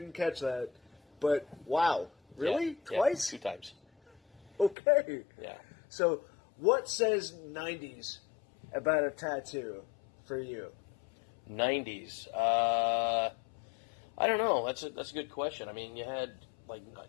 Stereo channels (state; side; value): drops out; right; at 4.8 s